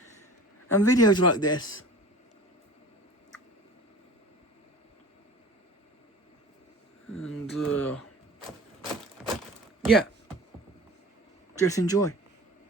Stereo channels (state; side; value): normal; both; correlation 0.42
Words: and videos like this. And yeah, Just enjoy.